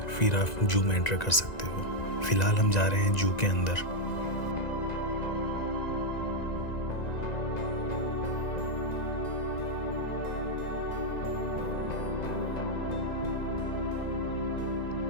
फिर आप जू में एंटर कर सकते हो। फ़िलहाल हम जा रहे हैं जू के अंदर।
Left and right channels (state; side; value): late; right; 1.9 ms